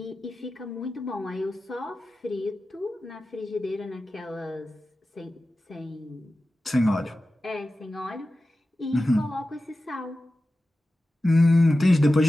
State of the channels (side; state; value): both; normal; correlation 0.94